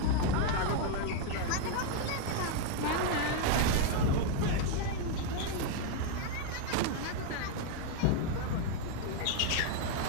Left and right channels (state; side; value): different; both; correlation 0.00